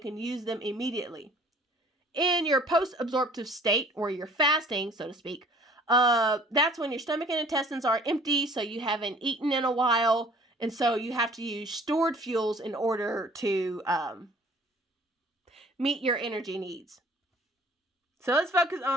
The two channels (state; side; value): normal; both; correlation 0.52